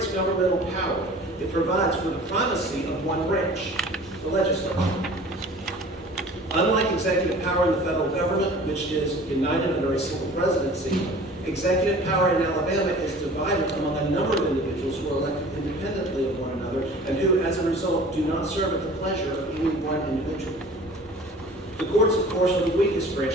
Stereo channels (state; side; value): normal; both; correlation 0.45